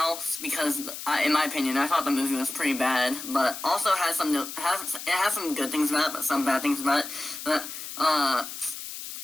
because, in my opinion, I thought the movie was pretty bad, but also it has some good things about it, but some bad things about it. But,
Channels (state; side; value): noise; left; hiss, 9 dB below the sound